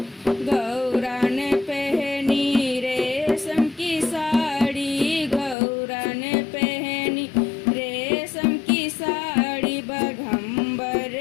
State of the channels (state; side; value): drops out; right; at 5.6 s